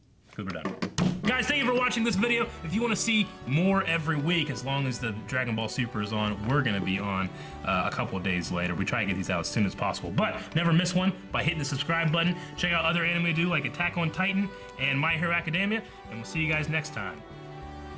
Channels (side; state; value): both; identical; correlation 1.00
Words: Because we're done. Guys, thank you for watching this video. If you want to see more every week, as long as the Dragon Ball Super is on, we're going to be on a couple of days later. We try to get these out as soon as possible. But never miss one by hitting the subscribe button. Check out other anime we do like Attack on Titan and My Hero Academia. And we'll see you guys next time.